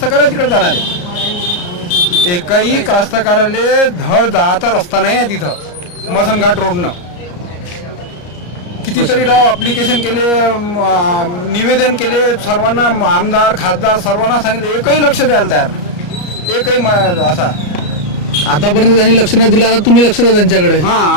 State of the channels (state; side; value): late; right; 34 ms